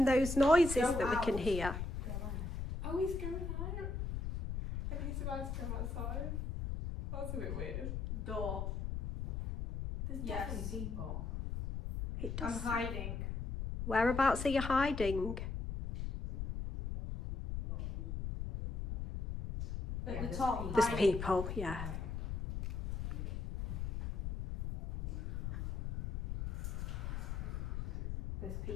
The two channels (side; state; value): left; noise; rumble, 3 dB below the sound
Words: those noises Go that we can out. hear? Oh, he's going out. And he's about to come outside. That's a bit weird. Door. There's Yes. definitely people. It I'm does. hiding. Whereabouts are you hiding? At Yeah, the there's top. people. There's hiding. people, yeah. There's